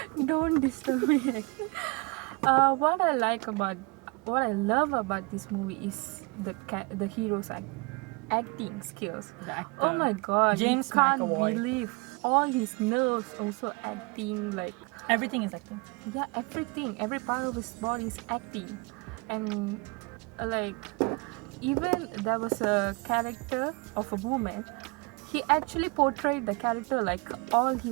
Don't disturb me. What I love about this movie is the hero's acting skills. The actor. Oh my god, James you can't McAvoy. believe all his nerves also acting, like, Everything is acting. yeah, every part of his body is acting. And like, even there was a character of a woman, he actually portrayed the character like all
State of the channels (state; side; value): quieter; left; 28.6 dB